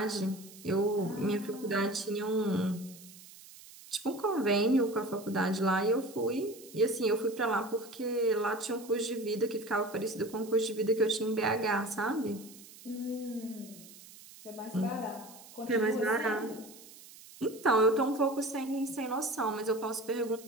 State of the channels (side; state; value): right; noise; hiss, 19 dB below the sound